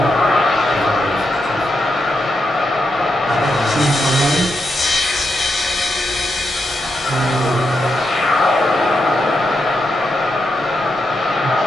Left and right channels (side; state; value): both; normal; correlation 0.84